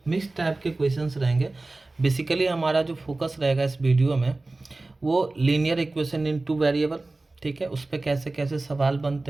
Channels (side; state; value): left; quieter; 3.1 dB